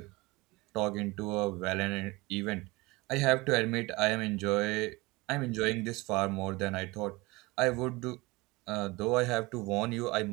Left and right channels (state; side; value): quieter; left; 22.9 dB